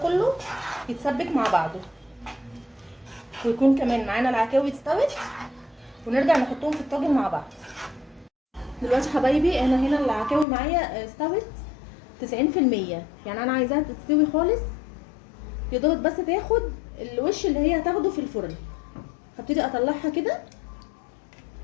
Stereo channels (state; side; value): drops out; right; at 10.5 s